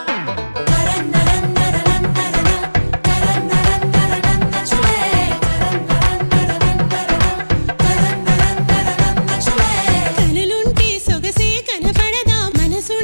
కనులుంటే సొగసే కనపడదా,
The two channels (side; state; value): both; inverted; correlation -1.00